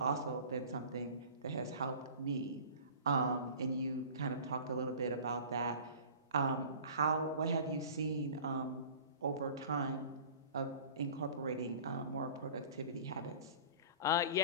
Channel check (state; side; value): inverted; both; correlation -0.42